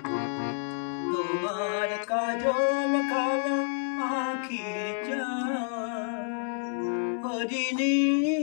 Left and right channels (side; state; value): right; silent; 59 dB below the other